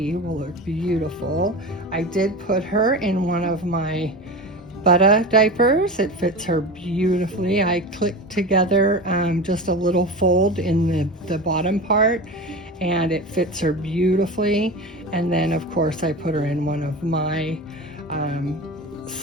will look beautiful. I did put her in one of my Butter diapers. It fits her beautifully. I clicked together just a little fold in the bottom part, and it fits her beautifully. And then of course I put her in one of my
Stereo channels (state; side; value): normal; both; correlation 0.28